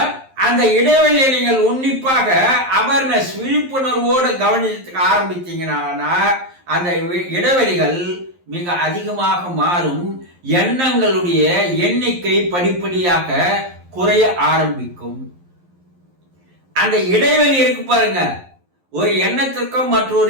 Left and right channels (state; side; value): late; left; 11 ms